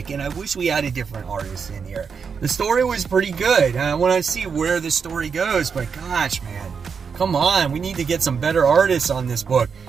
and I wish we had a different artist in here. The story was pretty good. I want to see where the story goes, but gosh, man, come on. We need to get some better artists on this book.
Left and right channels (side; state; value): left; quieter; 6.1 dB